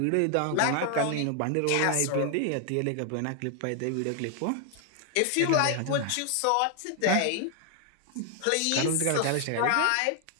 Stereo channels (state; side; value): different; both; correlation 0.00